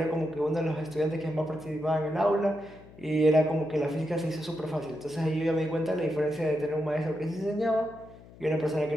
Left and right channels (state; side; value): noise; left; hum, 21 dB below the sound